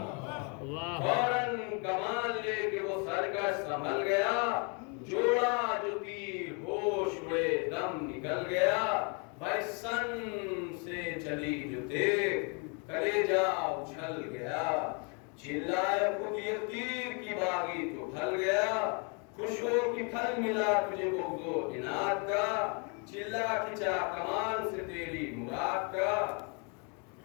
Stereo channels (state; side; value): quieter; right; 35.6 dB